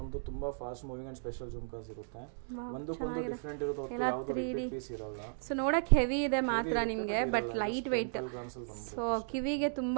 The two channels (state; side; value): silent; left; digital silence